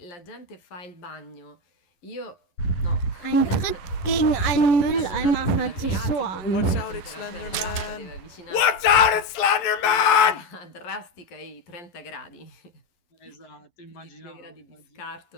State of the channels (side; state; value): right; late; 11 ms